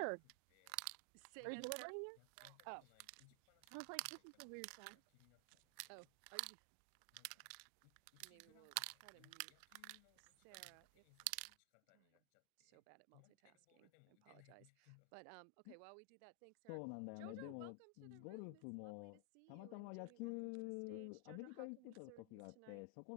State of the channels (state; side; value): different; both; correlation 0.00